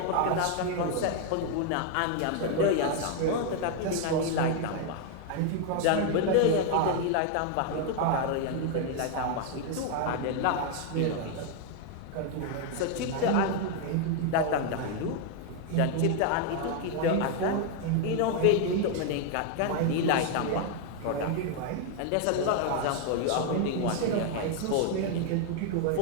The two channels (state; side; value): different; both; correlation 0.00